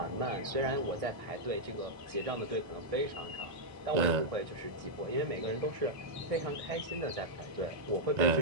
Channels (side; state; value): left; late; 1.6 ms